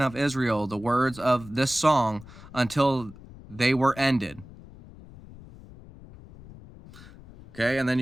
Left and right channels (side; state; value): left; noise; rumble, 19 dB below the sound